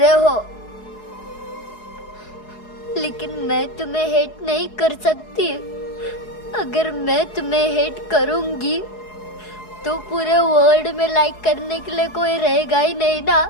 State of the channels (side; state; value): right; late; 4.7 ms